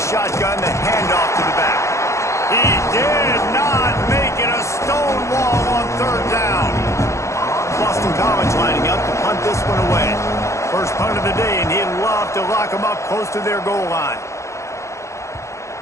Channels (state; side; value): late; right; 0.14 ms